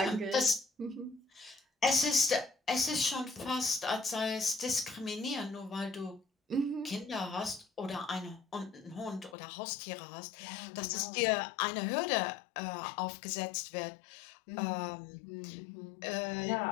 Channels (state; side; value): drops out; right; at 9.3 s